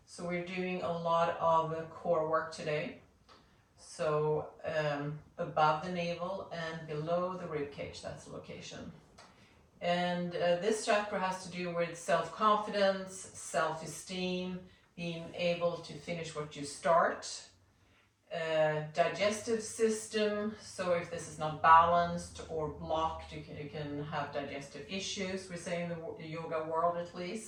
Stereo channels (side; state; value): both; identical; correlation 1.00